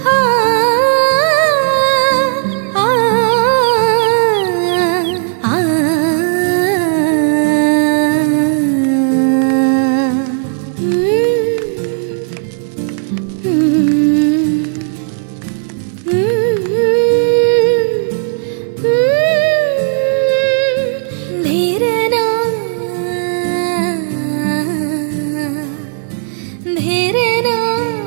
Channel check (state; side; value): silent; left; digital silence